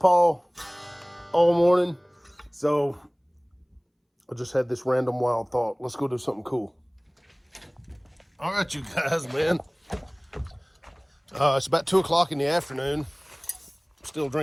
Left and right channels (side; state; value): both; identical; correlation 1.00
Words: all morning, so I just had this random wild thought. Let's go do something cool. All right, you guys, man. It's about 2 o'clock in the afternoon. Still